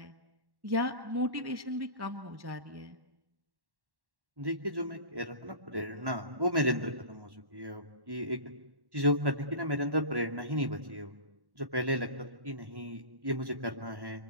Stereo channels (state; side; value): late; left; 1.1 ms